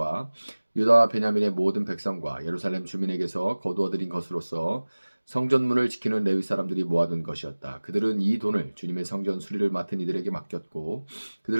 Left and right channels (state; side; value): inverted; both; correlation -1.00